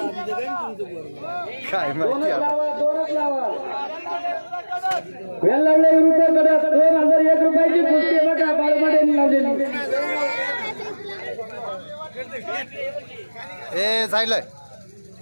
काय माहिती आता. वेल्लावडे विरुद्ध कडक 2001 रुपयाची कुस्ती बघा बाळमाडेंनी लावलेली. ए जायलंय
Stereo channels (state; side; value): inverted; both; correlation -1.00